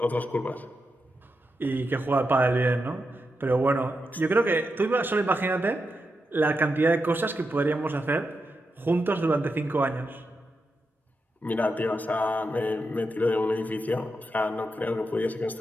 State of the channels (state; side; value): normal; both; correlation 0.86